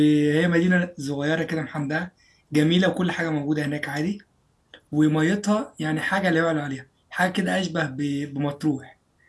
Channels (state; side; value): identical; both; correlation 1.00